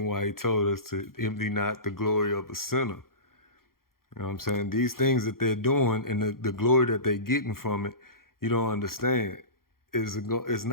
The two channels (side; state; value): right; late; 0.92 ms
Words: why he told us to envy not the glory of a sinner. You know what I'm saying? These things that they're doing and the glory that they're getting from it, you don't understand. It's